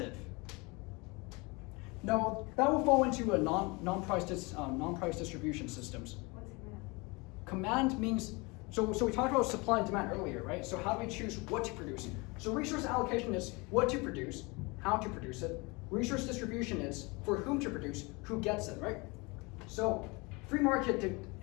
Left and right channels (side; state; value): right; quieter; 26.7 dB